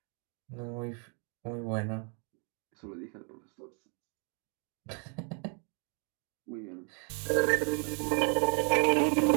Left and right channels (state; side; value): quieter; left; 40.0 dB